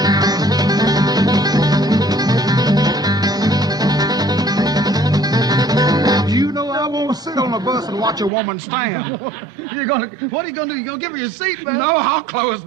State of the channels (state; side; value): drops out; left; at 8.3 s